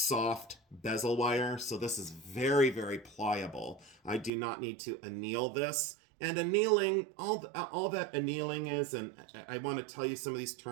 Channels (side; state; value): left; drops out; at 4.3 s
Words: bezel wire, so this is very, very pliable. I do not need to anneal this, And annealing, all that annealing is, and I want to tell you some of these